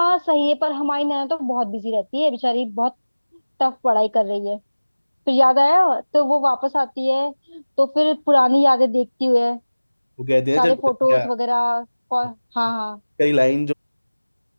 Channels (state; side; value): inverted; both; correlation -1.00